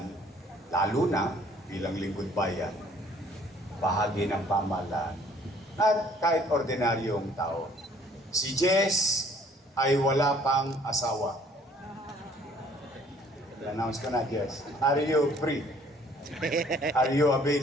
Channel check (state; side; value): normal; both; correlation 0.58